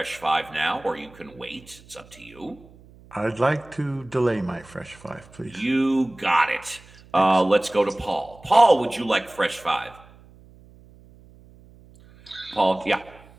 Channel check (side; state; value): right; noise; hum, 24 dB below the sound